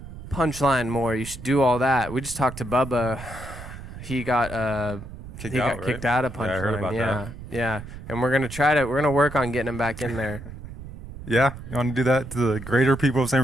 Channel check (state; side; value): noise; right; rumble, 12 dB below the sound